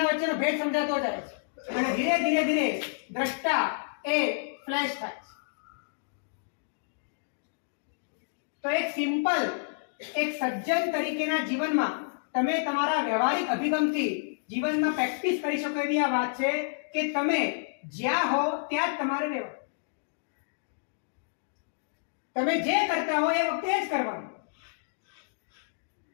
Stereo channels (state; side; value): silent; right; digital silence